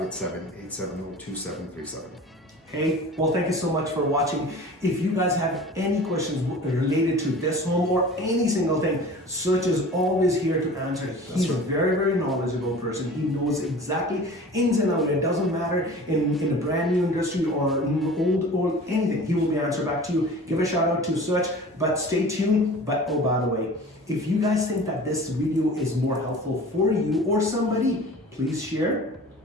Hey, well, thank you so much for watching. If you guys have any questions related to this home or any single thing, Such is always here to answer. He's a very, very knowledgeable person. He knows exactly ins and outs. It doesn't matter in a brand new industry or old or anything. He will be answered back to you. Give a shout out to Such, but stay tuned. But oh, by the way, if you guys think that this video is more helpful for you or somebody, please share,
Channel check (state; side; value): normal; both; correlation 0.40